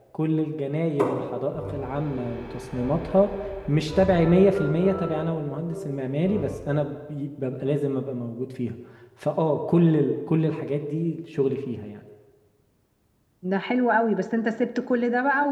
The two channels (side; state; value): both; identical; correlation 1.00